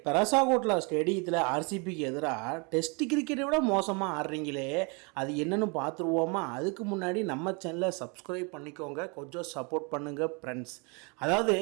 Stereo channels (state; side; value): quieter; left; 32.1 dB